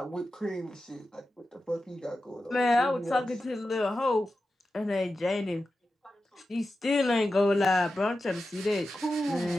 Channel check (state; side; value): normal; both; correlation 0.92